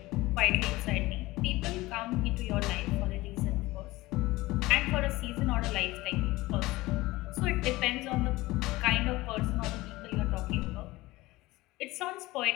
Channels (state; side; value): quieter; right; 19.5 dB